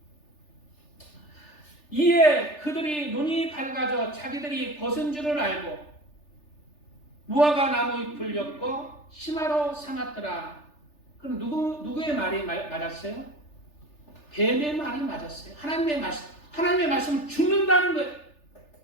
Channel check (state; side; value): late; right; 3.4 ms